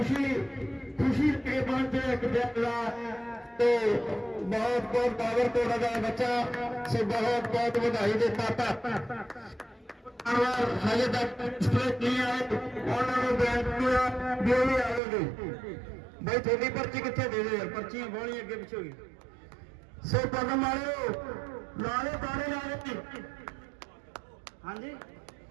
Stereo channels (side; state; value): left; drops out; at 15.0 s